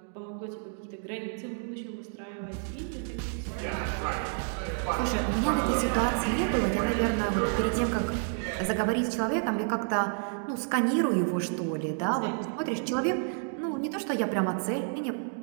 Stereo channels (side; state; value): left; silent; 58 dB below the other